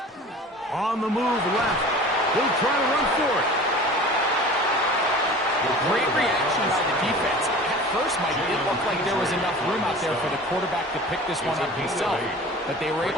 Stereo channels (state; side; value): normal; both; correlation 0.40